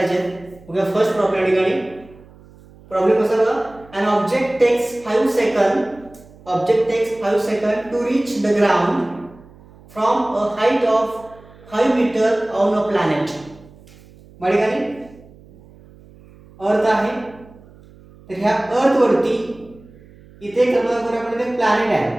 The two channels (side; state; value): right; noise; hum, 24 dB below the sound